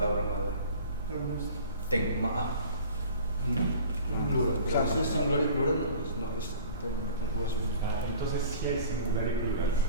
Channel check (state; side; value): inverted; both; correlation -0.45